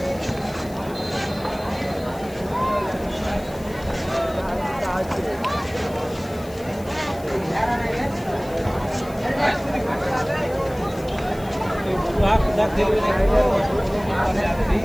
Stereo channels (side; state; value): left; noise; hiss, 21 dB below the sound